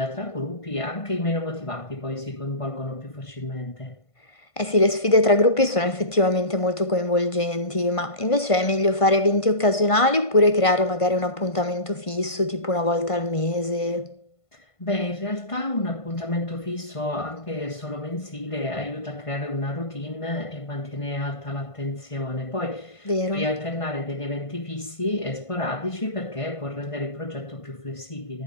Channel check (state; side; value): late; right; 1.5 ms